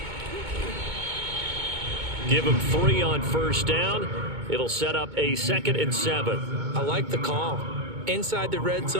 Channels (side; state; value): left; late; 2.2 ms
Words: Give him 3 on 1st down. It'll set up a 2nd and 7. I like the call. Inside the red